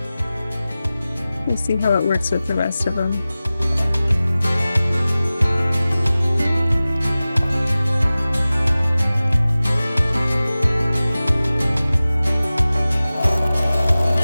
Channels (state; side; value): inverted; both; correlation -0.97